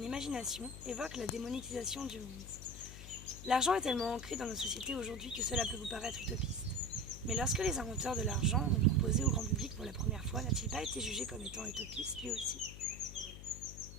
imagination évoque la démonétisation du monde. L'argent est tellement ancré dans nos sociétés aujourd'hui que cela peut vous paraître utopiste. Mais lorsque les inventeurs de l'argent l'ont proposé au grand public pour la première fois, n'a-t-il pas été jugé comme étant utopiste lui aussi?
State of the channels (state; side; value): noise; left; hum, 12 dB below the sound